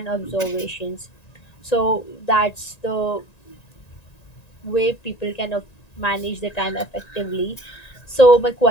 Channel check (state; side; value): late; right; 1.9 ms